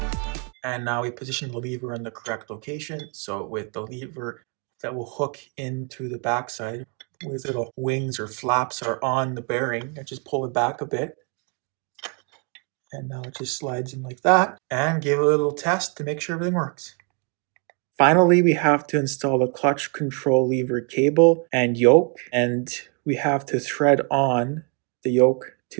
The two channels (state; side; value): quieter; left; 37.3 dB